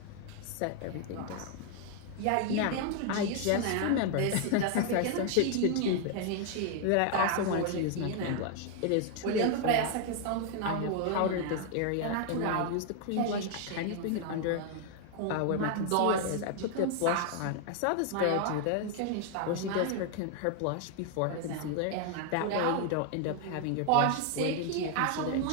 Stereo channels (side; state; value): both; different; correlation 0.00